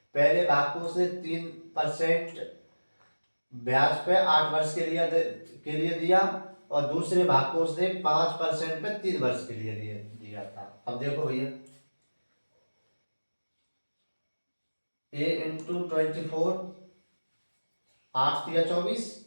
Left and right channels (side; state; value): both; inverted; correlation -1.00